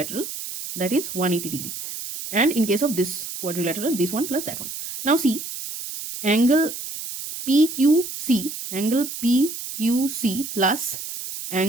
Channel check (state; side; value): noise; right; hiss, 8 dB below the sound